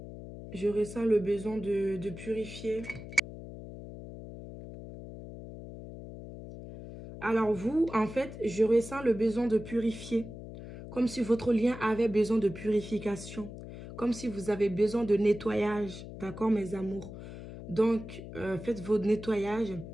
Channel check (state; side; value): noise; left; hum, 12 dB below the sound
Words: Je ressens le besoin de purifier. Alors vous, en fait, je ressens le besoin de purifier. Comme si votre lien avait besoin de purification. Comme si vous avez besoin de nettoyage. D'accord, mes amours? Donc, faites votre nettoyage.